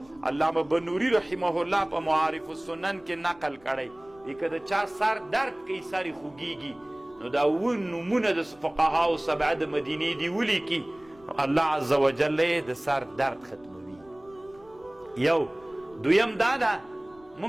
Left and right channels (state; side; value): noise; left; rumble, 28 dB below the sound